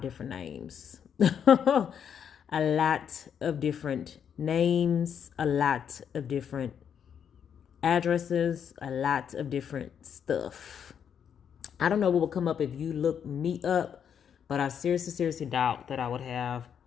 different names. A lot of different names, a lot of different addresses, a lot of different stuff. I don't know what will come up if you look me up, but I seriously doubt that I would have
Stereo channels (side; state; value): right; quieter; 8.1 dB